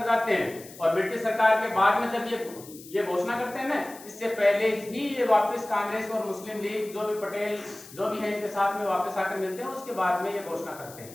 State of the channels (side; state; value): left; noise; hiss, 18 dB below the sound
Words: जाते हैं और ब्रिटिश सरकार के बाद में जब ये घोषणा करते हैं ना, इससे पहले ही ये वापस कांग्रेस और मुस्लिम लीग जो भी पटेल जो भी है इनके साथ में वापस आकर मिलते हैं, उसके बाद में ये घोषणा करते